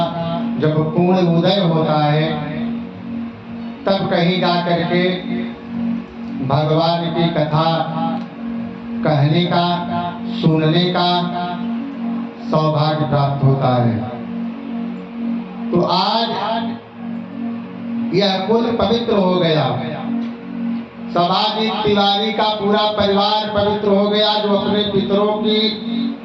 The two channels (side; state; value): both; identical; correlation 1.00